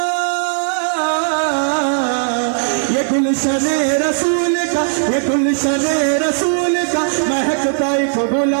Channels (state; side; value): silent; left; 68 dB below the other